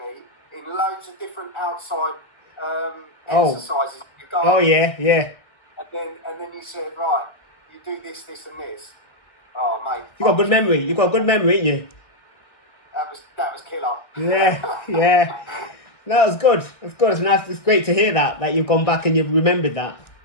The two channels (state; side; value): late; right; 1.6 ms